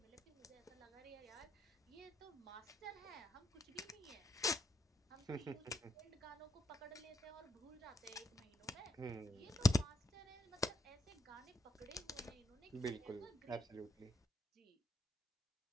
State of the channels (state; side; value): normal; both; correlation 0.79